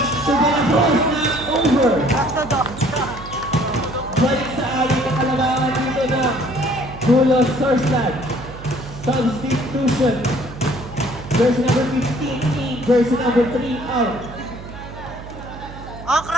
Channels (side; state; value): right; noise; hum, 14 dB below the sound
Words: to De La Cruz. Not over. Balik sa aling ng kalabangan dito na Bulls Sourceland. Substitution. Jersey number 15 in. Jersey number 3 out. Oh,